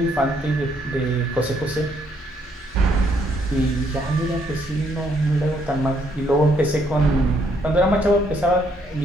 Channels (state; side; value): normal; both; correlation 0.70